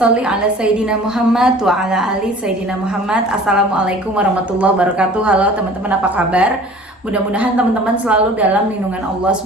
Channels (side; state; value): both; normal; correlation 0.46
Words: ala sayidina Muhammad wa ala ali sayidina Muhammad. Assalamualaikum warahmatullahi wabarakatuh. Halo teman-teman, apa kabar? Mudah-mudahan teman-teman selalu dalam lindungan Allah